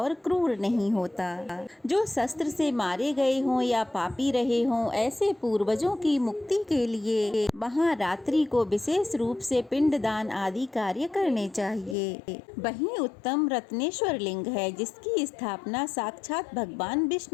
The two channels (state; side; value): drops out; right; at 12.0 s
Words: क्रूर नहीं होता। जो शस्त्र से मारे गए हों या पापी रहे हों, ऐसे पूर्वजों की मुक्ति के लिए वहाँ रात्रि को विशेष रूप से पिंडदान आदि कार्य करने चाहिए। वहीं उत्तम रत्नेश्वर लिंग है जिसकी स्थापना साक्षात भगवान